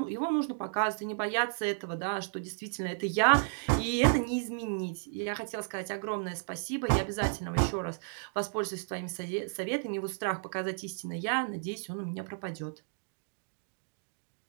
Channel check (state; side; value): silent; left; digital silence